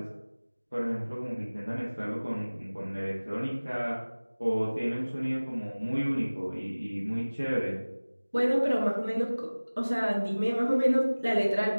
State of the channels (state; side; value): inverted; both; correlation -1.00